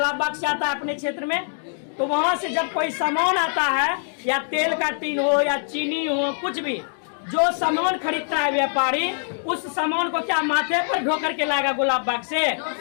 बाग से आता है अपने क्षेत्र में। तो वहां से जब कोई सामान आता है, या तेल का टीन हो या चीनी हो, कुछ भी जो सामान खरीदता है व्यापारी, उस सामान को क्या माथे पर ढो करके लाएगा गुलाब बाग से?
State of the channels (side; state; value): right; silent; digital silence